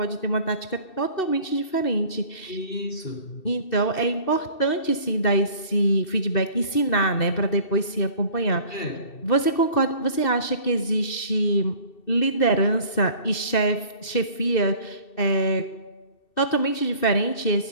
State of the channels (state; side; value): late; right; 2.7 ms